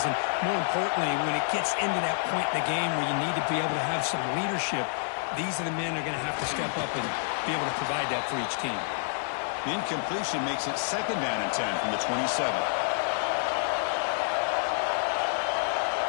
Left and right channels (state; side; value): silent; right; digital silence